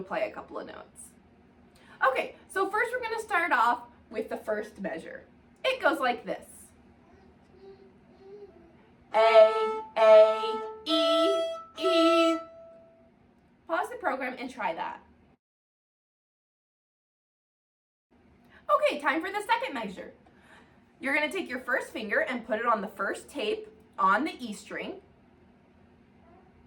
a couple of notes. Okay, so first we're going to start off with the first measure. It goes like this. A, E, E. Pause the program and try that. Okay, time for the second measure. You're going to take your first finger and put it on the first tape on the E string.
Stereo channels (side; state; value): both; identical; correlation 1.00